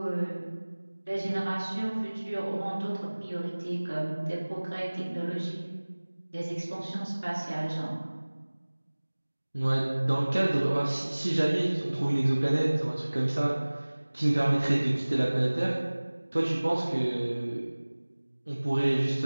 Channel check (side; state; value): both; inverted; correlation -1.00